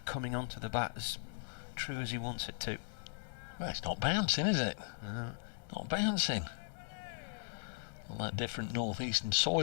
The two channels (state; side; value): silent; right; digital silence